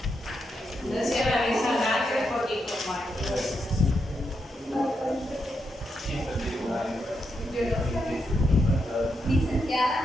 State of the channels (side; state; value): both; normal; correlation 0.83